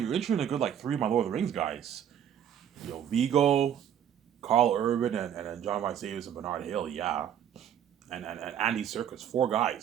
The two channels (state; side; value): quieter; left; 9.5 dB